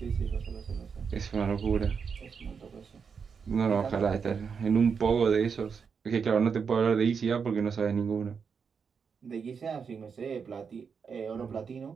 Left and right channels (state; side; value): quieter; left; 6.1 dB